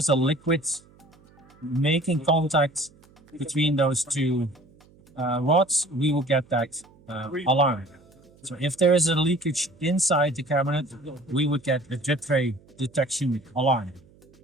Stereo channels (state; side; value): noise; right; hum, 28 dB below the sound